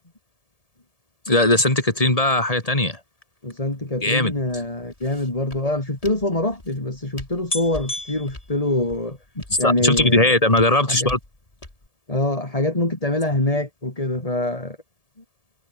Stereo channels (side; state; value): right; late; 1.7 ms